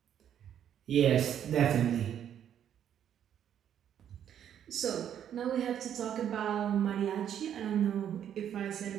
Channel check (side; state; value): left; quieter; 9.6 dB